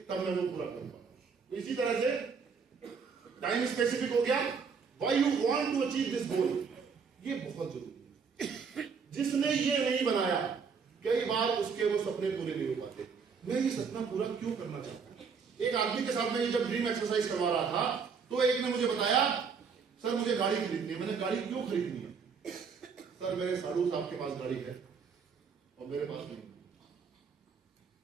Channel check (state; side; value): quieter; left; 5.8 dB